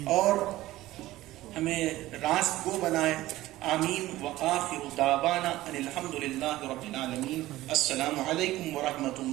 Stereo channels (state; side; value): quieter; left; 16.4 dB